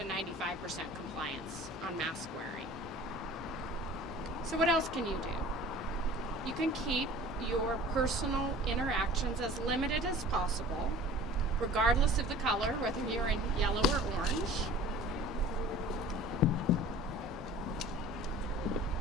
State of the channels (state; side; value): normal; both; correlation 0.44